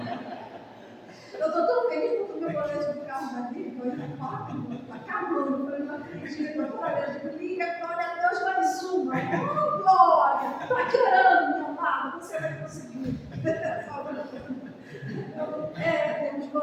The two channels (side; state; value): both; identical; correlation 1.00